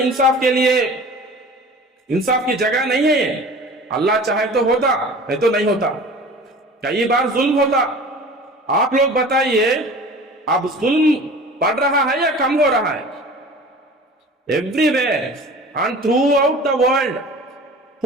के लिए, इंसाफ की जगह नहीं है. अल्लाह चाहे तो होता, नहीं तो नहीं होता. कई बार जुल्म होता. आप लोग बताइए, अब जुल्म बढ़ रहा है या कम हो रहा है? Everywhere and throughout the world,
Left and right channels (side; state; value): both; normal; correlation 0.41